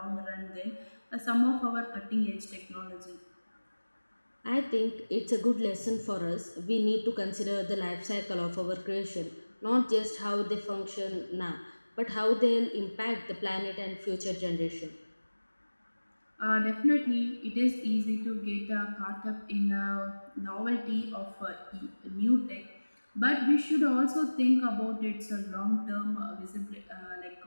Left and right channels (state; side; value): inverted; both; correlation -1.00